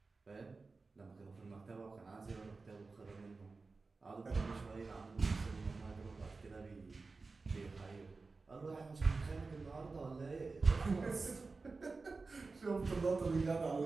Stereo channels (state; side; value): quieter; left; 4.0 dB